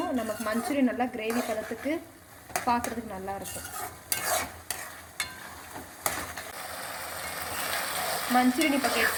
நமக்கு மஞ்சூரியன் நல்லா கிரேவி பதத்துக்கு பார்க்குறதுக்கு நல்லாயிருக்கும். மஞ்சூரியன் இப்போ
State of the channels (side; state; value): both; identical; correlation 1.00